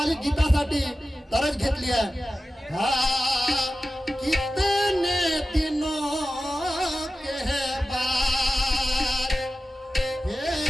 गीतासाठी तरज घेतली आहे. हा कितने दिनों के है बात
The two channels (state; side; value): normal; both; correlation 0.94